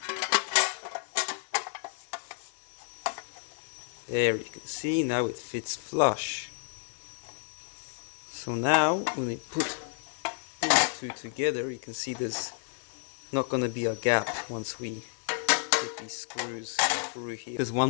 There you can see, now it fits flush. So now when we put these two together, you can see there's not going to be a gap once we put these screws through here. Because one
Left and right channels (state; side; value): silent; right; 57 dB below the other